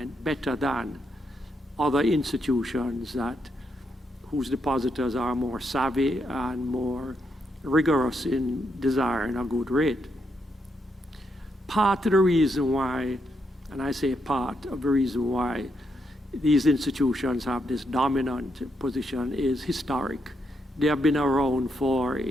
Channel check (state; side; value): normal; both; correlation 0.80